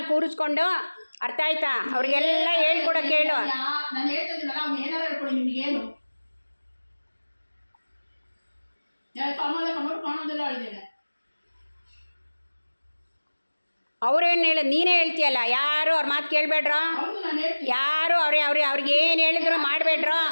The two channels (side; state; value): both; inverted; correlation -1.00